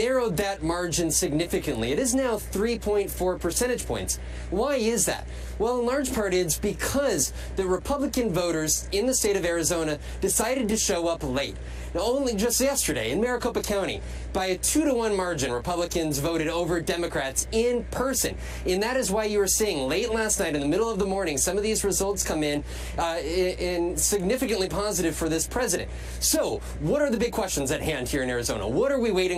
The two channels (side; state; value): both; identical; correlation 1.00